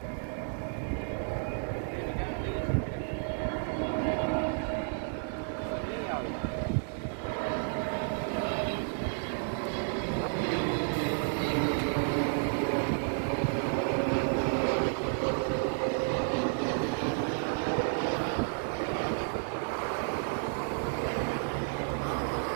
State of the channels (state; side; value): silent; left; 57 dB below the other